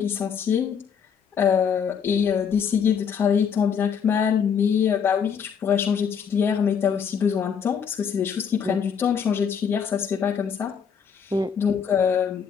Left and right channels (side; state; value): right; quieter; 7.1 dB